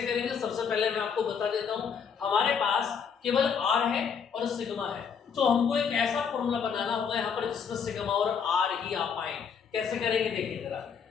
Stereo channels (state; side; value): quieter; right; 6.7 dB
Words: करेंगे, सबसे पहले मैं आपको बता देता हूँ। हमारे पास केवल R है और सिग्मा है, तो हमको एक ऐसा फॉर्मूला बनाना होगा यहाँ पर जिसमें सिग्मा और R ही आ पाए। कैसे करेंगे देखिए जरा।